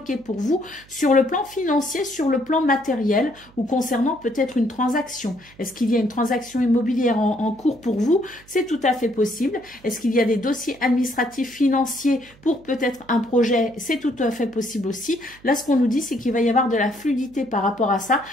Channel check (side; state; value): right; noise; hum, 26 dB below the sound